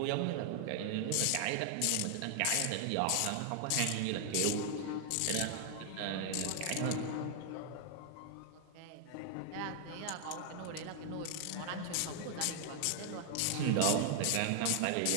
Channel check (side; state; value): both; different; correlation 0.00